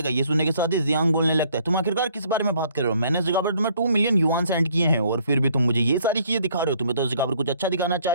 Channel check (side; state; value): both; inverted; correlation -0.62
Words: ये सुनने के साथ ही जियांग बोलने लगता है तुम आखिरकार किस बारे में बात कर रहे हो, मैंने इस जगह पर तुम्हें 2 मिलियन युआन सेंड किए हैं और फिर भी तुम मुझे ये सारी चीजें दिखा रहे हो, तुम्हें तो इस जगह पर कुछ अच्छा दिखाना